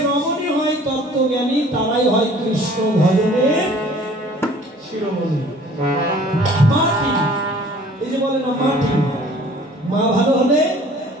রমণী হয় তত্ত্বজ্ঞানী, তারাই হয় কৃষ্ণ ভজনের শিরোমণি। মাটি, এই যে বলে না মাটি, মা ভালো হলে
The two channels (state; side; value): normal; both; correlation 0.51